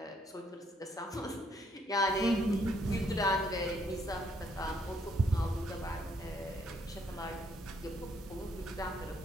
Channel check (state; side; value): normal; both; correlation 0.70